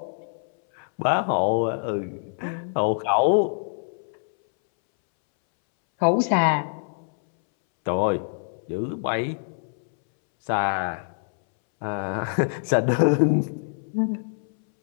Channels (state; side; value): silent; right; 62 dB below the other